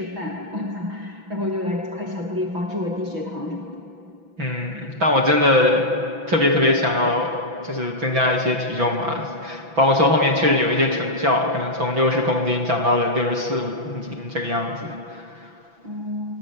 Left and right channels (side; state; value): left; late; 6.0 ms